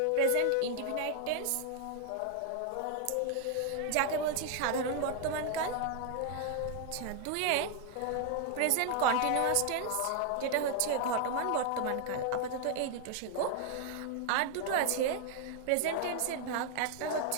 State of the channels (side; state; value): both; different; correlation 0.00